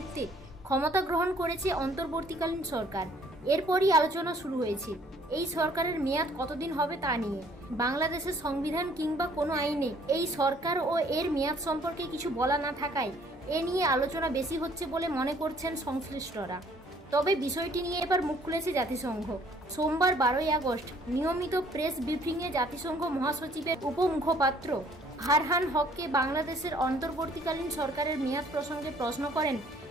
ক্ষমতা গ্রহণ করেছে অন্তর্বর্তীকালীন সরকার। এরপরই আলোচনা শুরু হয়েছে এই সরকারের মেয়াদ কতদিন হবে তা নিয়ে। বাংলাদেশের সংবিধান কিংবা কোনো আইনে এই সরকার ও এর মেয়াদ সম্পর্কে কিছু বলা না থাকায় এ নিয়ে আলোচনা বেশি হচ্ছে বলে মনে করছেন সংশ্লিষ্টরা। তবে বিষয়টি নিয়ে এবার মুখ খুলেছে জাতিসংঘ। সোমবার 12ই আগস্ট নিয়মিত প্রেস ব্রিফিংয়ে জাতিসংঘ মহাসচিবের উপমুখপাত্র ফারহান হককে বাংলাদেশের অন্তর্বর্তীকালীন সরকারের মেয়াদ প্রসঙ্গে প্রশ্ন করেন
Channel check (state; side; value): normal; both; correlation 0.60